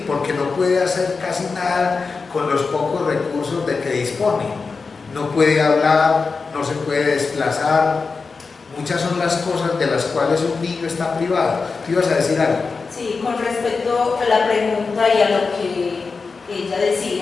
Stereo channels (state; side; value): quieter; right; 4.5 dB